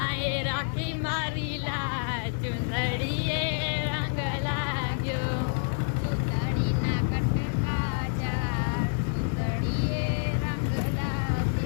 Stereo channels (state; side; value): silent; right; digital silence